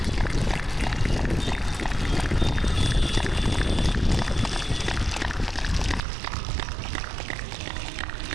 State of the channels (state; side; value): drops out; left; at 6.0 s